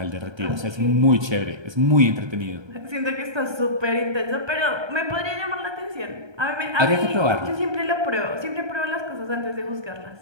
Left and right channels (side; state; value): left; late; 1.3 ms